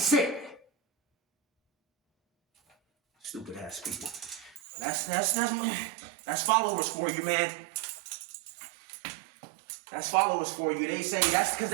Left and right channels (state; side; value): drops out; left; at 4.6 s